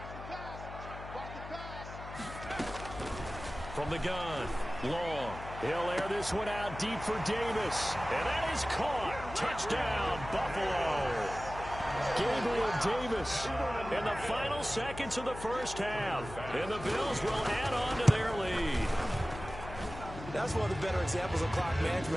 From the gun, Long. He'll air this one out deep for Davis. And that is caught. Touchdown, Buffalo. Gabriel Davis in the final seconds of the 1st half. And the Bills will add on to their lead. That's one of the better examples of clock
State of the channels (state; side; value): noise; left; hum, 11 dB below the sound